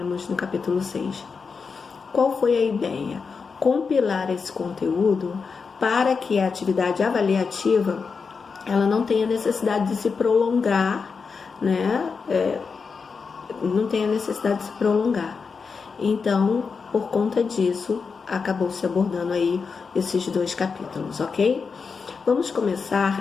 no capítulo 6. Qual foi a ideia? Compilar esse conteúdo para que a atividade avaliativa ela não tenha necessidade de se prolongar, né? Não tenha necessidade de se prolongar. Então, por conta disso, acabou se abordando aí esses 2 capítulos, ok? Vamos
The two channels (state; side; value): quieter; right; 5.2 dB